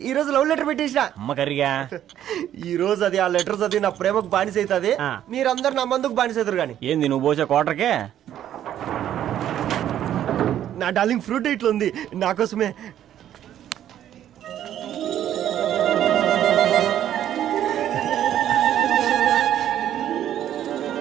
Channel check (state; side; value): quieter; left; 11.1 dB